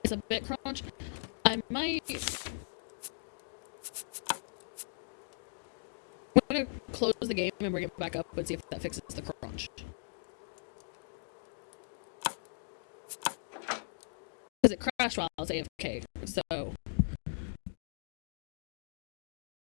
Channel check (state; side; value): silent; right; digital silence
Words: It's a bit crunch. I might. I'm gonna close the game and bring it back up and see if that fixes the crunch. Because it crashed while I was AFK, so.